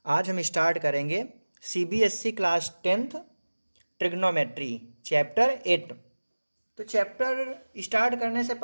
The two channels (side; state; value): both; inverted; correlation -1.00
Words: आज हम स्टार्ट करेंगे CBSE class 10th trigonometry chapter 8। तो चैप्टर स्टार्ट करने से